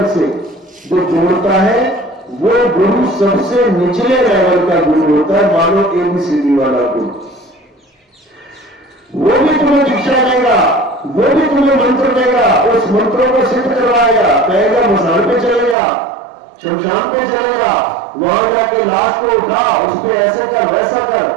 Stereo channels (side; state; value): left; drops out; at 15.8 s